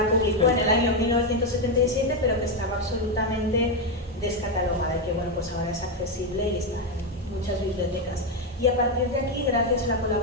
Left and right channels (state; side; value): normal; both; correlation 0.06